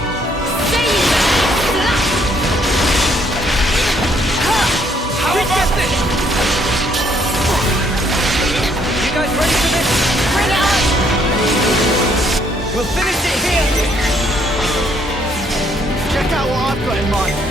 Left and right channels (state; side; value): normal; both; correlation 0.68